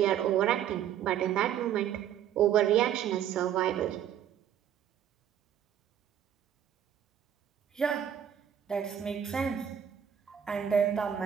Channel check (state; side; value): quieter; left; 9.5 dB